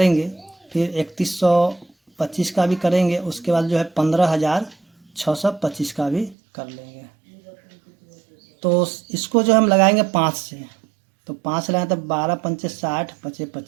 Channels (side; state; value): left; drops out; at 6.4 s